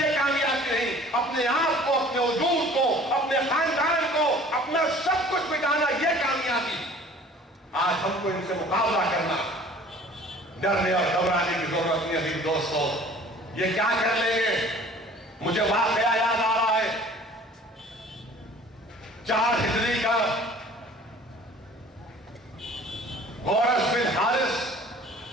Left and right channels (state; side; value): normal; both; correlation 0.49